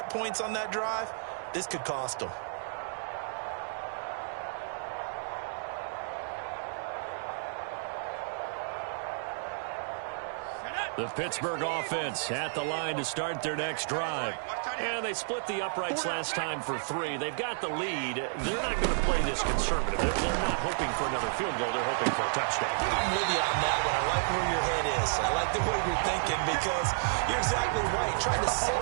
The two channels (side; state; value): left; silent; digital silence